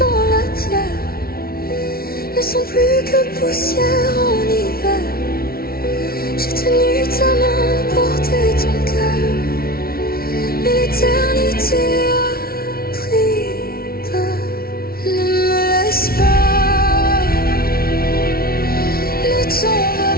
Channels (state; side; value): late; right; 0.44 ms